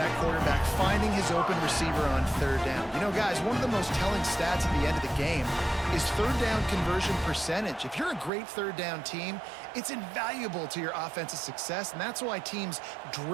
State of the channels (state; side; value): drops out; left; at 8.3 s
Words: quarterback, finding his open receiver on third down. You know, guys, one of the most telling stats at the end of the game is third down conversion percentage. If you're a great third down team, it's invaluable to your offensive success, and that's why teams